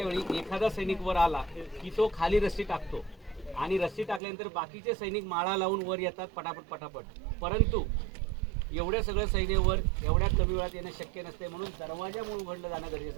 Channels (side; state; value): left; drops out; at 4.2 s